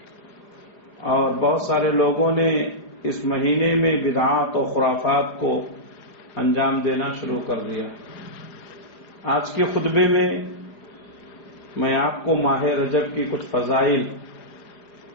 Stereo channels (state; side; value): late; right; 4.9 ms